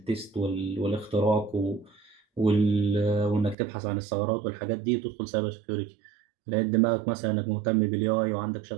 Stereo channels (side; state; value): left; drops out; at 3.6 s